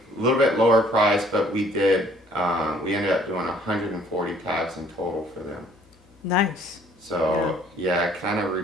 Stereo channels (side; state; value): both; normal; correlation 0.58